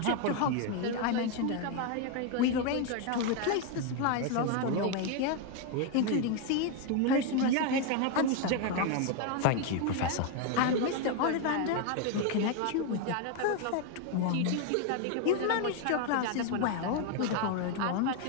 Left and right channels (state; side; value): different; both; correlation 0.01